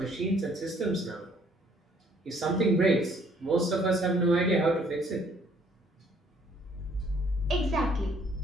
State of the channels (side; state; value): both; normal; correlation 0.62